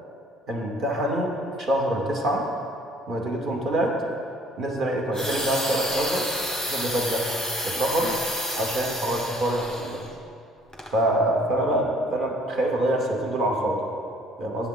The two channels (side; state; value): both; normal; correlation 0.58